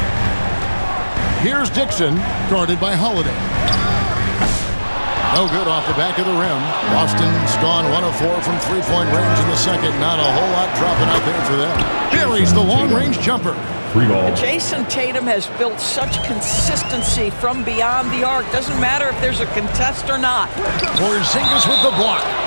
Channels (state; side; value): inverted; both; correlation -1.00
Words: Here's Dixon, guarded by Holiday. No good off the back of the rim. Boston's gone 1 of 4 from three-point range in the second. Not a whole lot dropping out there for them. Buries the long-range jumper. 3 ball. Jason Tatum has built such consistency from beyond the arc. Doesn't matter if there's a contest or not. Porzingis with the block.